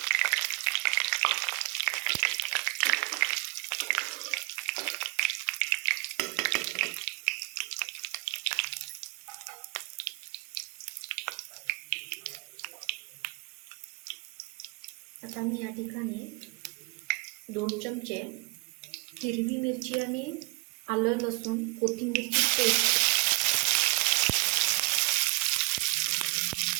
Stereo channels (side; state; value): left; quieter; 31.4 dB